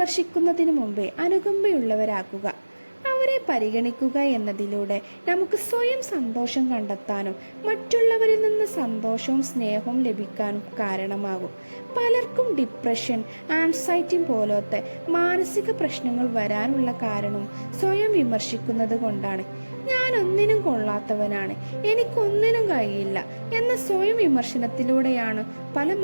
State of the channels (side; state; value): both; inverted; correlation -1.00